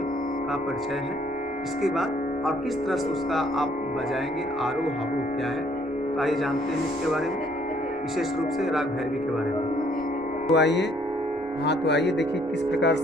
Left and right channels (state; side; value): normal; both; correlation 0.64